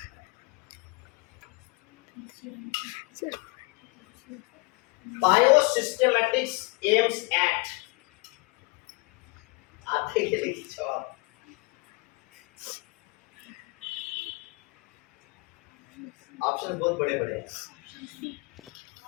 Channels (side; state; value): right; quieter; 27.0 dB